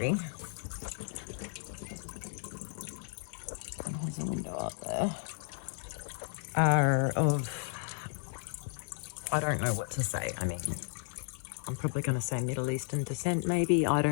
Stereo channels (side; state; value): right; silent; digital silence